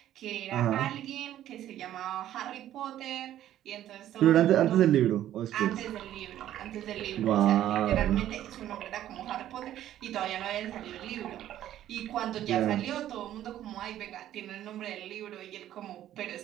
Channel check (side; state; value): left; quieter; 12.3 dB